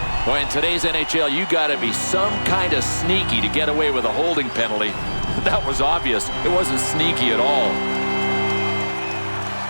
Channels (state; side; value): inverted; both; correlation -1.00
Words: Boy, in today's NHL, you got to be some kind of sneaky to get away with a holding penalty. That was obvious. It wasn't sneaky at all.